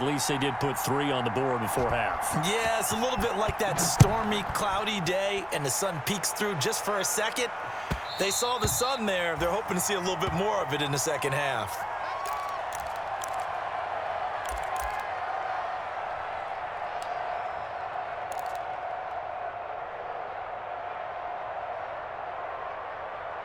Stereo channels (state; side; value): identical; both; correlation 1.00